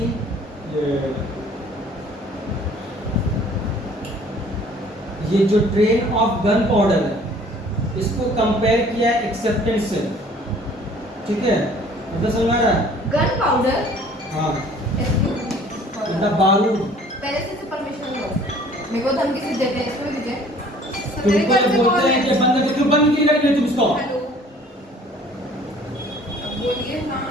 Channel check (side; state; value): both; normal; correlation 0.53